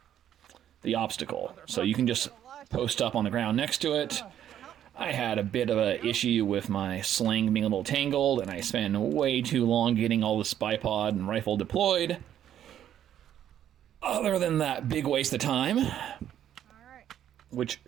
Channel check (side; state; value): left; quieter; 10.6 dB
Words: the obstacle. So you can just post up on the ground next to it. I had a bit of an issue with my sling being a little tangled, and I spent way too long getting all this bipod and rifle deployed. Other than that big waste of time, which